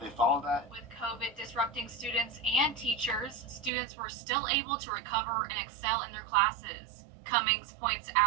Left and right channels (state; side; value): drops out; left; at 3.7 s